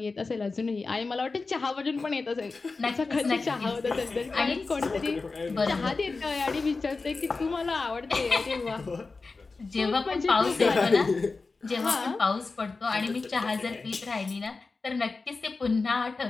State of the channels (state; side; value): quieter; right; 4.0 dB